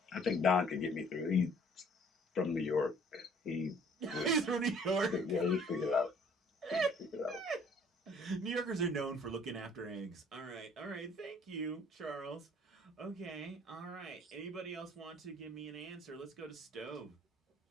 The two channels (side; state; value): both; normal; correlation 0.57